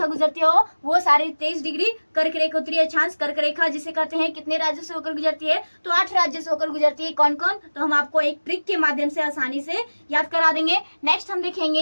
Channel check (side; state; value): both; inverted; correlation -1.00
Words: गुजरती हो वो 23.5 डिग्री कर्क रेखा उत्तरी अक्षांश। कर्क रेखा जिसे कहते हैं कितने राज्यों से होकर गुजरती है? तो 8 राज्यों से होकर गुजरती है। कौन कौन? तो हम आपको एक ट्रिक के माध्यम से आसानी से याद करा देंगे। नेक्स्ट हम देखेंगे